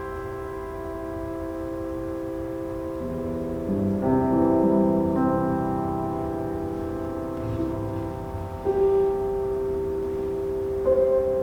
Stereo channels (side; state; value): both; identical; correlation 1.00